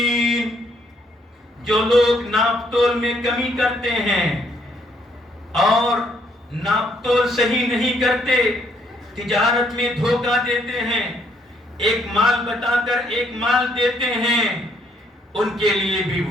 جو لوگ ناپ تول میں کمی کرتے ہیں اور ناپ تول صحیح نہیں کرتے، تجارت میں دھوکہ دیتے ہیں، ایک مال بتا کر ایک مال دیتے ہیں، ان کے لیے بھی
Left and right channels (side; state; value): both; normal; correlation 0.69